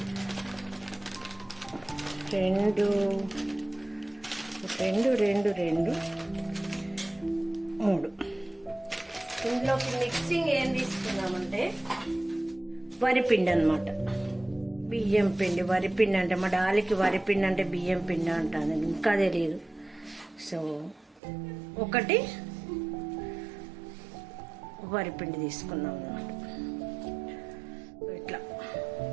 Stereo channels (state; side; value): drops out; left; at 21.2 s